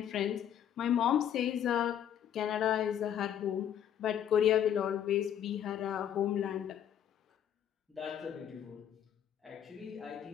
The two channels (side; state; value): right; quieter; 9.8 dB